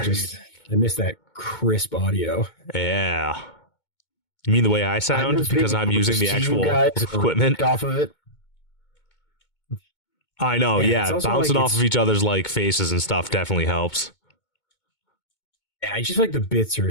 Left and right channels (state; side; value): late; right; 2.2 ms